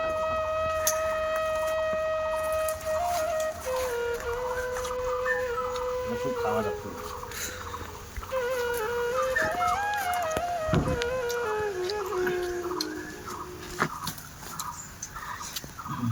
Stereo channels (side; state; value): both; identical; correlation 1.00